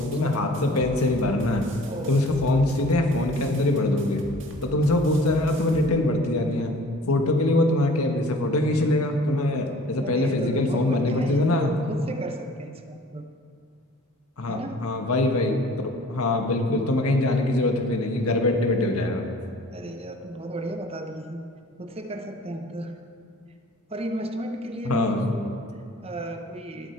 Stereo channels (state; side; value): normal; both; correlation 0.49